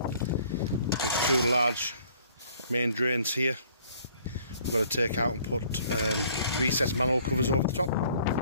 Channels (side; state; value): both; inverted; correlation -0.59